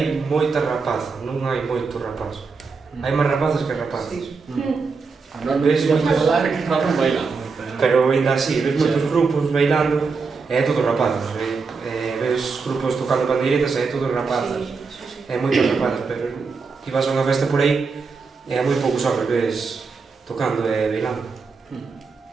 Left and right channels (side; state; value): left; quieter; 4.8 dB